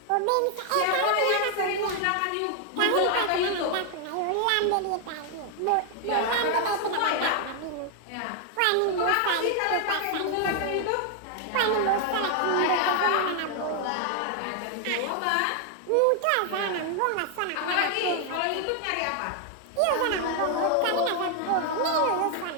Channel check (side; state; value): both; different; correlation 0.00